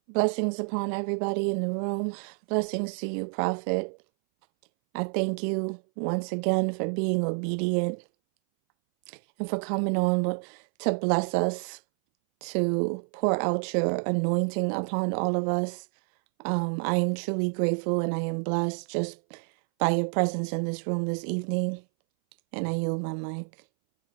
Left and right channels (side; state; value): left; silent; 59 dB below the other